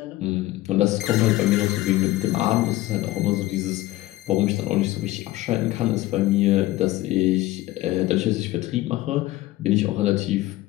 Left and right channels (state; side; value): quieter; right; 17.0 dB